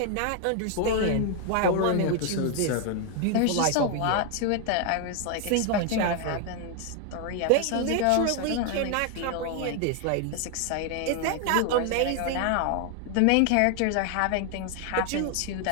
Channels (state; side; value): different; both; correlation 0.01